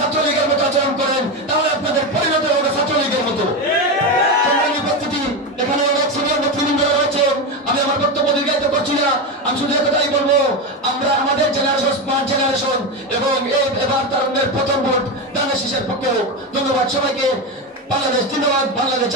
ছাত্রলীগের মতো আচরণ করেন তাহলে আপনাদের পরিণত হবে ছাত্রলীগের মতো। উপস্থিতি, এখানে অনেক সিনিয়র নেতৃবৃন্দ রয়েছেন, আমি আমার বক্তব্য দীর্ঘায়িত করছি না। আমি শুধু একটাই বলবো, আমরা আমাদের জেনারেশন স্মার্ট জেনারেশন এবং এবার তারুণ্যের প্রথম ভোট ধানের শীষের পক্ষে হোক। ধন্যবাদ সবাইকে। বাংলাদেশ জিন্দাবাদ, বাংলাদেশ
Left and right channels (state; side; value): normal; both; correlation 0.15